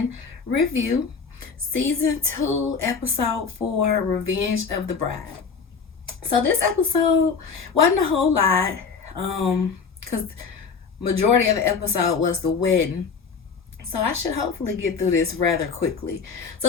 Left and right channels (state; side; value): quieter; right; 5.5 dB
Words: review. Season 2, episode 4, Revenge of the Bride. So this episode wasn't a whole lot, because majority of the episode was the wedding. So I should hopefully get through this rather quickly.